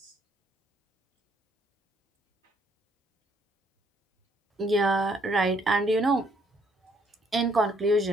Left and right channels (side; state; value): both; normal; correlation 0.67